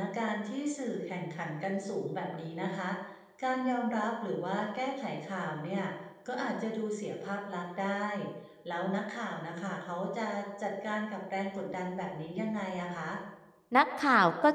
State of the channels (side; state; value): both; identical; correlation 1.00